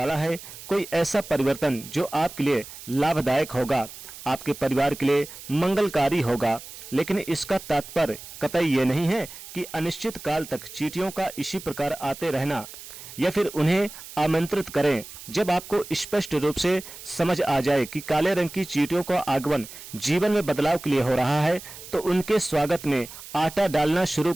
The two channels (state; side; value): noise; right; hiss, 14 dB below the sound